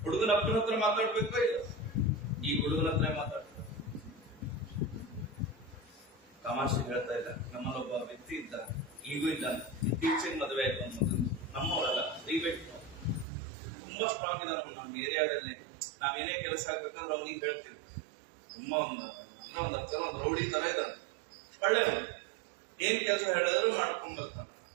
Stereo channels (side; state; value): left; drops out; at 13.2 s